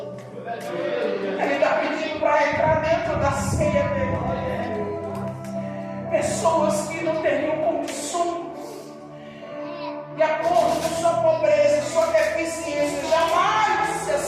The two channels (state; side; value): identical; both; correlation 1.00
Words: Ele está pedindo para entrar dentro da ceia dele. Pessoas que não teriam condições, de acordo com sua pobreza, sua deficiência, jamais se